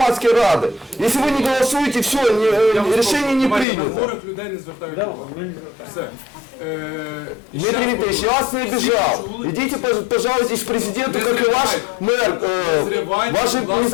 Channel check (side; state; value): right; drops out; at 3.7 s